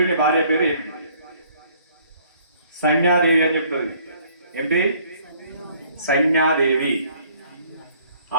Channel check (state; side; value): inverted; both; correlation -0.60